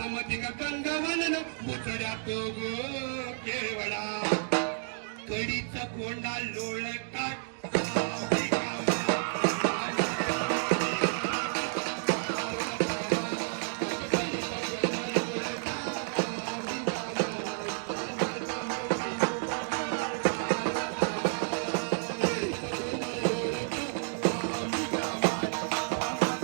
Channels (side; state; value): left; silent; digital silence